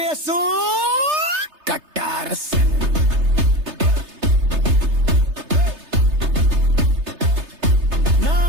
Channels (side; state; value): left; late; 3.3 ms